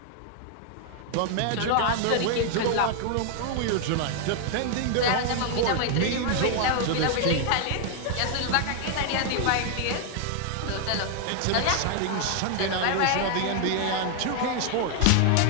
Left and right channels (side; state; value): both; different; correlation 0.00